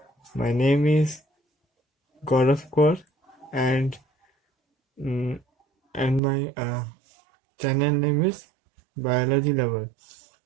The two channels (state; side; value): drops out; left; at 6.2 s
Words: My name is Gaurav Kaur and mm, my channel name is Biology Lover.